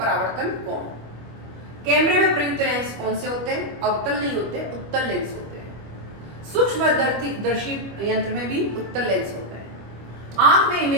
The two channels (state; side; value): late; left; 25 ms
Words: कोण। कैमरे में प्रयुक्त लेंस कौन से होते हैं? अवतल नहीं होते, उत्तल लेंस होते हैं। सूक्ष्मदर्शी यंत्र में भी उत्तल लेंस होते हैं। आंख में